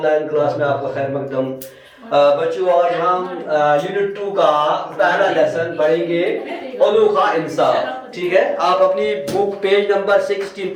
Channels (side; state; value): both; identical; correlation 1.00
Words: class में आपका खैर मकदम। बच्चों, आज हम यूनिट 2 का पहला लेसन पढ़ेंगे, अनोखा इंसाफ। ठीक है, आप अपनी बुक पेज नंबर 16